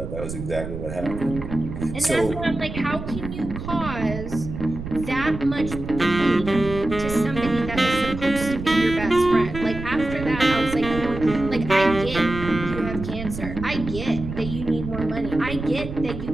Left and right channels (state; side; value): noise; right; rumble, 8 dB below the sound